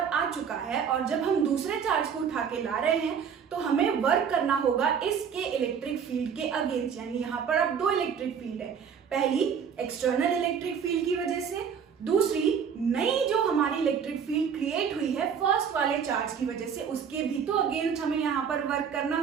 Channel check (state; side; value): quieter; left; 7.1 dB